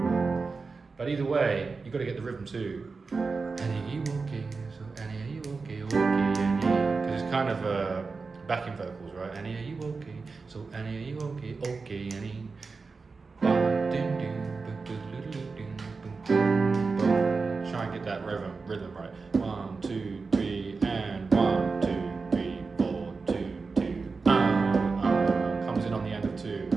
But either way, you've got to get the rhythm too. Annie, are you okay? So Annie, are you okay? Okay, Annie. Because it's kind of backing vocals, right? Annie, are you okay? So Annie, are you okay? Okay, Annie. Try and get that rhythm right. 1, 2, 3, and 1, 2, 3, 4, 2, 2. Comes in on the end of 2,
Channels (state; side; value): quieter; left; 4.4 dB